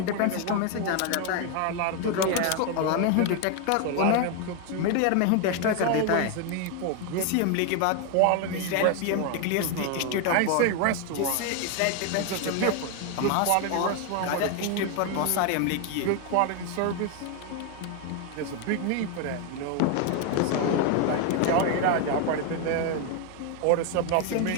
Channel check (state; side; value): different; both; correlation 0.01